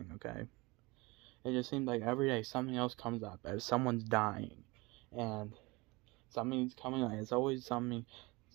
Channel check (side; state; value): left; quieter; 24.4 dB